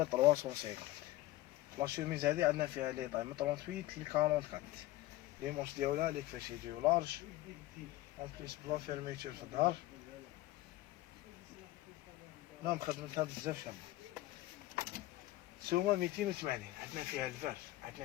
350. لا شوميز هادي عندنا فيها لي طاي من 38 ل 44. لي مونش ديالها لي كيفاش يجيو لارج اون بليس بلا فيرميتور في الظهر. المهم خدمتها بزاف شابة. سومة 280. عندنا فيها الفار،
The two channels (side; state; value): right; quieter; 16.4 dB